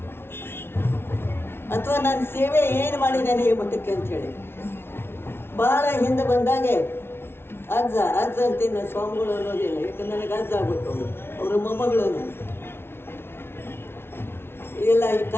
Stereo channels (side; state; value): right; late; 0.12 ms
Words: ಅಥವಾ ನಾನು ಸೇವೆ ಏನು ಮಾಡಿದ್ದೇನೆ ಈ ಮಠಕ್ಕೆ ಅಂಥೇಳಿ. ಭಾಳ ಹಿಂದೆ ಬಂದಾಗೆ ಅಜ್ಜ ಅಂತೀನಿ ನಾನು, ಸ್ವಾಮಿಗಳು ಅನ್ನೋದಿಲ್ಲ. ಯಾಕಂದ್ರೆ ನನಗೆ ಅಜ್ಜ ಆಗ್ಬೇಕು. ಅವರ ಮೊಮ್ಮಗಳನ್ನು ಇಲ್ಲ, ಈ